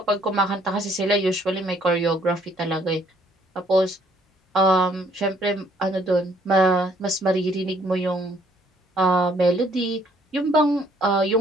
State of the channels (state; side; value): normal; both; correlation 0.64